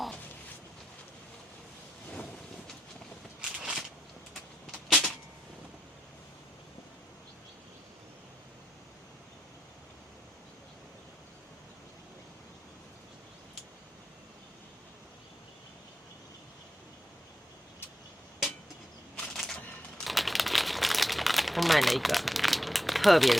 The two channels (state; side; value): normal; both; correlation 0.87